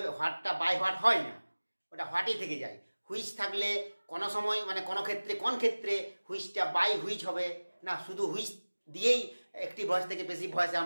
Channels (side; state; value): both; inverted; correlation -1.00